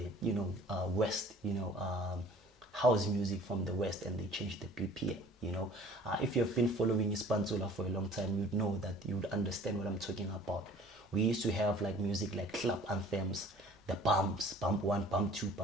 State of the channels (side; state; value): both; normal; correlation 0.50